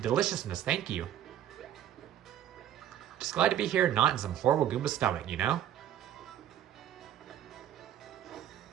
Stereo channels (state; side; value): quieter; left; 10.8 dB